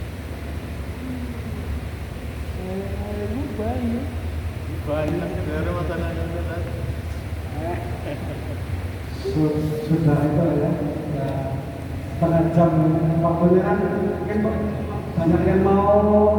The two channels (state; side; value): identical; both; correlation 1.00